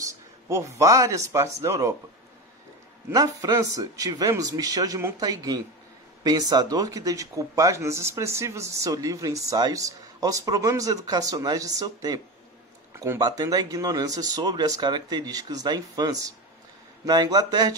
por várias partes da Europa. Na França, tivemos Michel de Montaigne, pensador que dedicou páginas expressivas de seu livro Ensaios aos problemas educacionais de seu tempo, combatendo a ignorância sobre as características da infância. Na Inglaterra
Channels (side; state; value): both; normal; correlation 0.22